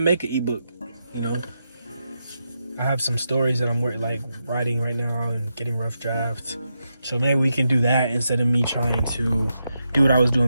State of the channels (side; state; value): both; inverted; correlation -0.85